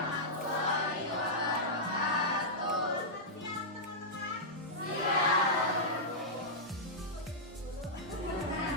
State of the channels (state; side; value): normal; both; correlation -0.11